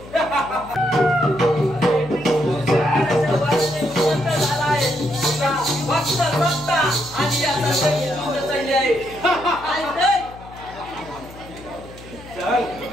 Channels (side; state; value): left; noise; hum, 18 dB below the sound